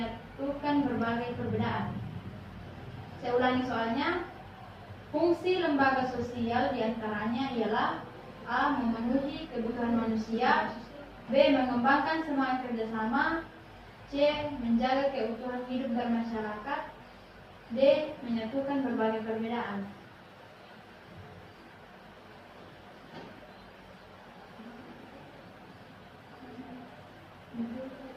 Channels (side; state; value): both; identical; correlation 1.00